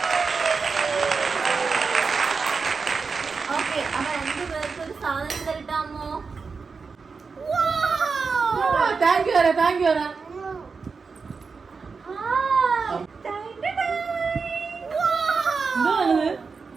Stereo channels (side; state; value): left; quieter; 4.9 dB